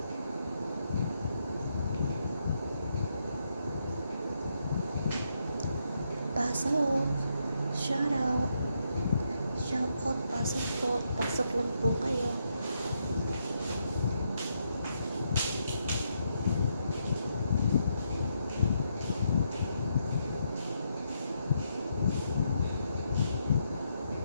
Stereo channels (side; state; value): both; inverted; correlation -0.79